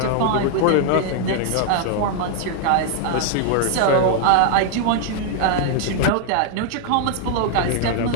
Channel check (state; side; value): different; both; correlation 0.00